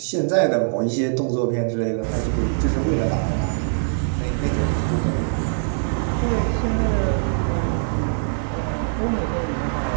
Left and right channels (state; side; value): silent; left; 64 dB below the other